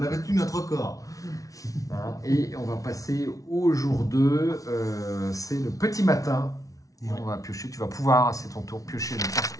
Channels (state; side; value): late; right; 0.17 ms